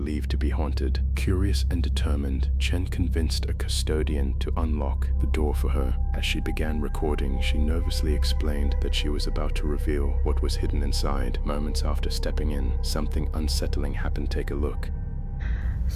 to be haunted. Curious and determined, Chen convinced a custodian to unlock the door for her. As she began recording, she nervously explained that she was about to reveal what was hidden inside. Moments after stepping in, something unsettling happened. Take a look.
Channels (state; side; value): identical; both; correlation 1.00